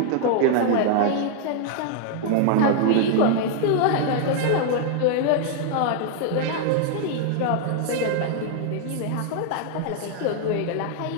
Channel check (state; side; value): different; both; correlation 0.00